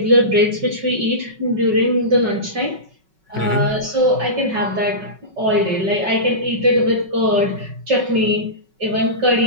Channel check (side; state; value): left; late; 5.3 ms